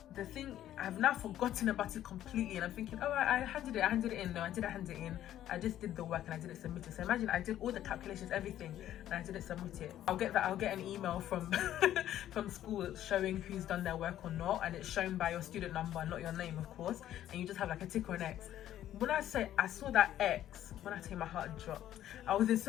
the thing, I've now forgotten about it completely, and I'm thinking, oh, I handed it in. No, I didn't hand it in. I just did the work and I didn't submit it. So imagine I did all the calculations, everything, and I didn't submit it. I'll get an email from from school showing who's done their work or not, and it's shown by your student number, not your name, of course, and you just have like a tick or an X. When I say I saw that X, when I tell you my heart dropped, I was in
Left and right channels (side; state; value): right; quieter; 12.1 dB